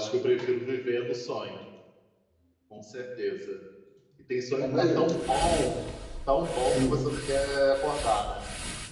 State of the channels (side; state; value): both; identical; correlation 1.00